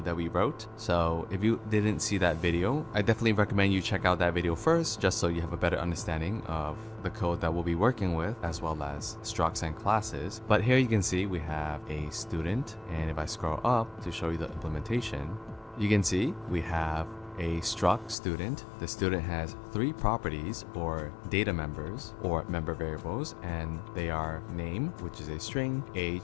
that we wrote. So if you didn't see that video, I definitely recommend you check out that video first, just so you have a better understanding of the code that we'll be working with, as well as structs and classes. But here you can see we have a student, and if I scroll up to show you the implementation, you can see we have a struct student. The student has three properties or data members or member variables, and they are name, which is a string,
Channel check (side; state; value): right; drops out; at 18.2 s